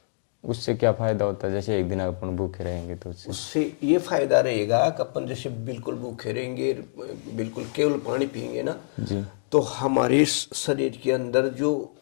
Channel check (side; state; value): right; silent; digital silence